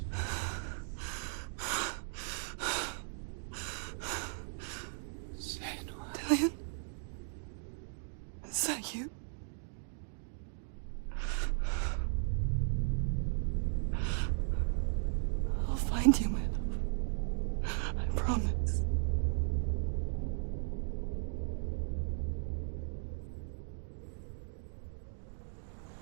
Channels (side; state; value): left; silent; digital silence